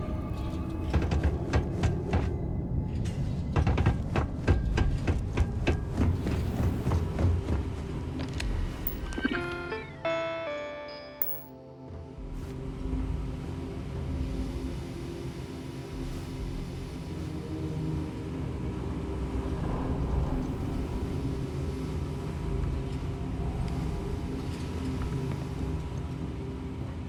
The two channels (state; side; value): identical; both; correlation 1.00